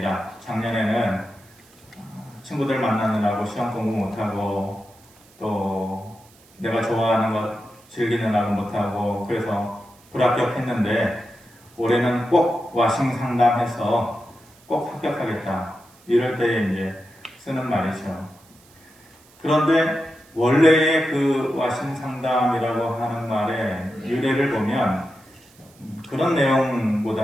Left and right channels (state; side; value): noise; right; hiss, 28 dB below the sound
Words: 작년에는 친구들 만나느라고 시험 공부 못하고 또 내가 좋아하는 것 즐기느라고 못하고 그래서 불합격했는데 올해는 꼭 와싱 상담해서 꼭 합격하겠다. 이럴 때에 이제 쓰는 말이죠. 그런데 원래의 그 와싱 상담이라고 하는 말의 유래를 보면 그런